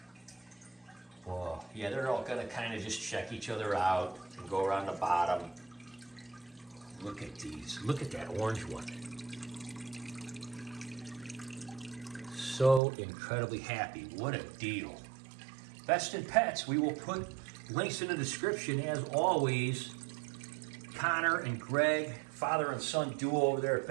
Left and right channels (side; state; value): left; drops out; at 12.8 s